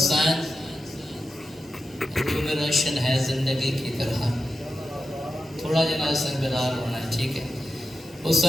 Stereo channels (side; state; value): both; normal; correlation 0.90